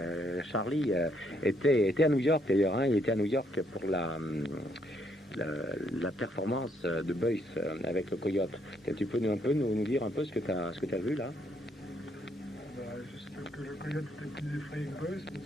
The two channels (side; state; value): both; normal; correlation 0.72